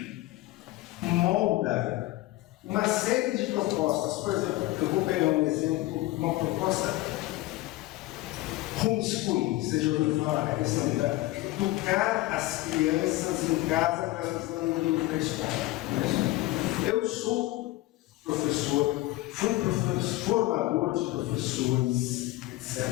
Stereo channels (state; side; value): quieter; right; 17.9 dB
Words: molda uma série de propostas. Por exemplo, eu vou pegar um exemplo, uma proposta homeschooling. Você já ouviu falar? A questão de educar as crianças em casa para elas não irem para a escola. Eu sou professor, fui formador de professores, etc.